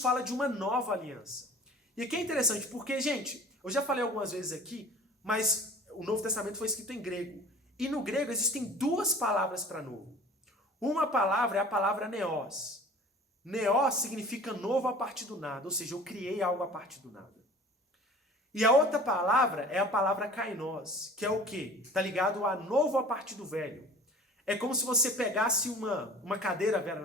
de uma nova aliança. E aqui é interessante porque, gente, eu já falei algumas vezes aqui, mas o Novo Testamento foi escrito em grego. E no grego existem duas palavras para novo. Uma palavra é a palavra neos. Neos significa novo a partir do nada, ou seja, eu criei algo a partir do nada. E a outra palavra é a palavra kainos, que é o quê? Está ligado a novo a partir do velho. É como se você pegasse uma cadeira velha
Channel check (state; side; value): normal; both; correlation 0.44